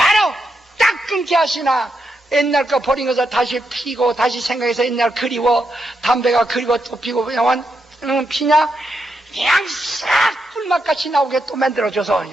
딱 끊게 하시나 옛날 거 버린 것을 다시 피고 다시 생각해서 옛날 그리워 담배가 그리워 또 피고 그냥 피냐 그냥 싹 꿀맛같이 나오게 또 만들어줘서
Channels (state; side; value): normal; both; correlation 0.83